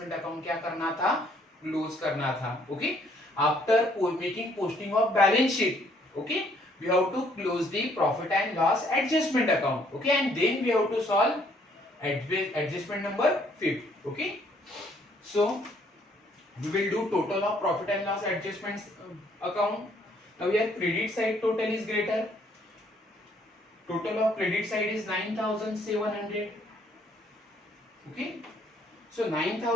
account क्या करना था, क्लोज करना था. Okay, after making posting of balance sheet, okay, we have to close the profit and loss adjustment account. Okay, and then we have to solve adjustment number 5. Okay, so we will do total of profit and loss adjustments account. Now here credit side total is greater, total of credit side is 9,700. okay, so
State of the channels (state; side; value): normal; both; correlation 0.65